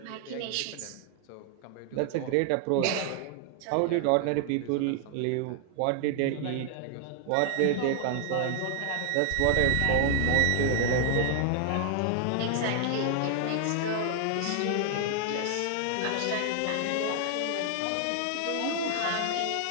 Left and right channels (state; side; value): different; both; correlation 0.00